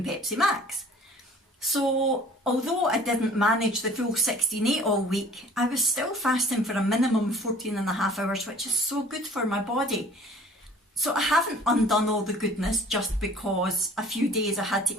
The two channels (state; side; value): normal; both; correlation 0.49